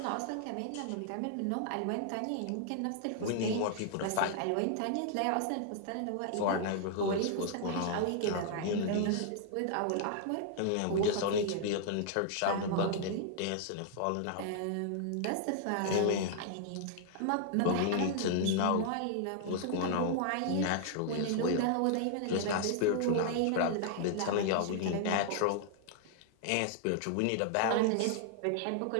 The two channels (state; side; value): different; both; correlation -0.01